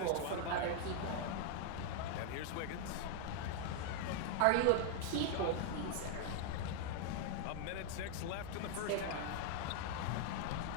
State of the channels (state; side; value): different; both; correlation 0.00